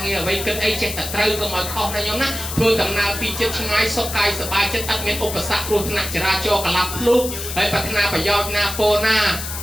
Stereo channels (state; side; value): noise; left; hiss, 7 dB below the sound